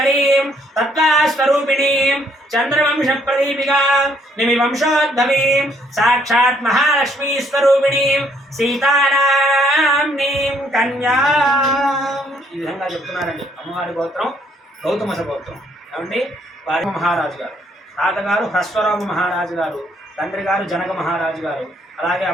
तत्त्वास्वरूपिणीं चन्द्रवंशप्रदीपिकां निमिवंशोद्भवीं साक्षात् महालक्ष्मीस्वरूपिणीं सीतानाम्नीं कन्यां ఈ విధంగా చెప్తున్నారండి. అమ్మవారి గోత్రం గౌతమస గోత్రం. ఏమండి వారి మహారాజు గారు, తాతగారు హ్రస్వరామ మహారాజు గారు, తండ్రి గారు జనక మహారాజు గారు, అలాగే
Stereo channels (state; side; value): normal; both; correlation 0.67